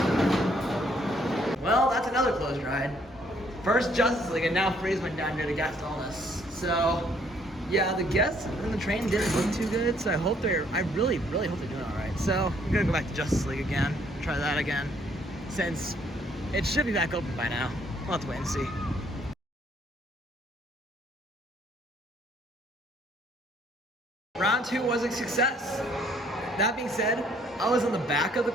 Well, that's another closed ride. First Justice League, and now Freeze went down here to guest illness. So, yeah, the guests in the train didn't look too good, so I really hope they're doing all right. So, I'm gonna go back to Justice League again, try that again, since it should be back open by now. We'll have to wait and see. Round 2 was a success. That being said, I was in the back of the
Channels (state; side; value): normal; both; correlation 0.65